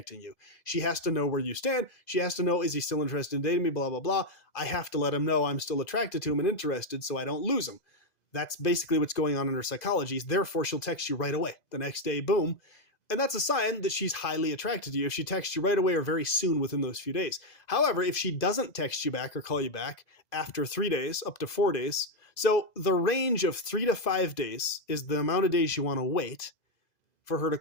you. She has to know where you stand. She has to know, is he still interested in dating me, blah, blah, blah. I have to let him know I'm still attracted to him and interested so I don't lose him. That's basically what's going on in her psychology. Therefore, she'll text you right away. The next day, boom. And that's a sign that she's highly attracted to you if she texts you right away or very soon within those few days. However, if she doesn't text you back or call you back after 3 days, up to 4 days, so the range of 3 to 5 days is the amount of days you want to wait for her to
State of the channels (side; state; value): right; late; 2.0 ms